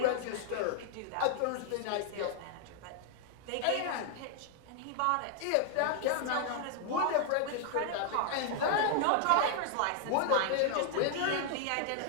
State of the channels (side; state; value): both; different; correlation 0.00